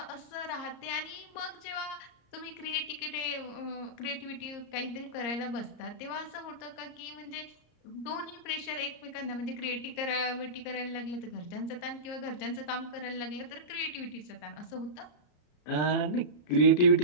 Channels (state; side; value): late; right; 34 ms